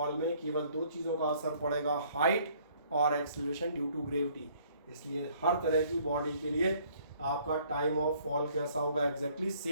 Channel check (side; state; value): both; inverted; correlation -0.61